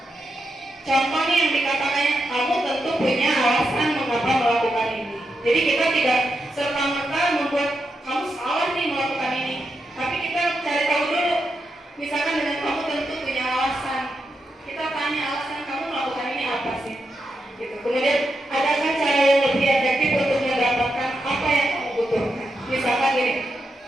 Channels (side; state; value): both; normal; correlation 0.85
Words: Contoh nih yang dikatakannya, kamu tentu punya alasan mengapa melakukan ini. Jadi kita tidak serta-merta membuat kamu salah nih melakukan ini. Tapi kita cari tahu dulu. Misalkan dengan kamu tentu punya alasan. Kita tanya alasan kamu melakukan ini apa sih? Gitu. Kemudian adakah cara yang lebih efektif untuk mendapatkan apa yang kamu butuhkan? Misalkan gini,